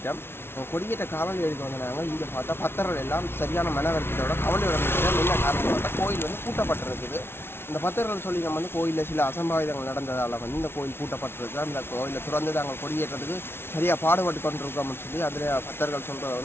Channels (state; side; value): late; right; 0.12 ms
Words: கொடியேற்ற காவல் எடுக்க வந்தாங்க. இங்கே பார்த்தா பத்தர்கள் எல்லாம் சரியான மனவருத்தத்தோட கவலை நடந்துச்சு. என்ன காரணம் பார்த்தா கோயில் வந்து பூட்டப்பட்டிருக்குது. இந்த பத்தர்கள் சொல்லி நம்ம வந்து கோயிலில் சில அசம்பாவிதங்கள் நடந்ததால் வந்து இந்த கோயில் பூட்டப்பட்டிருக்கு. அந்த கோயிலை திறந்து நாங்கள் கொடியேற்றத்துக்கு சரியாக பாடுபட்டு கொண்டிருக்கோம்னு சொல்லி அதில் பத்தர்கள் சொல்கிறத